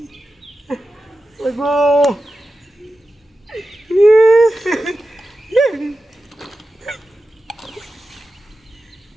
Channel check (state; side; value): normal; both; correlation 0.92